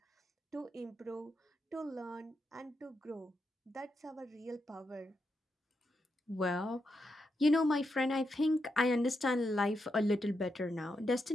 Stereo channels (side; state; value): both; normal; correlation 0.84